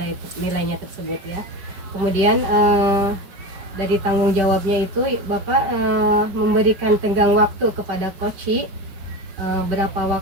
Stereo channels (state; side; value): late; left; 5.1 ms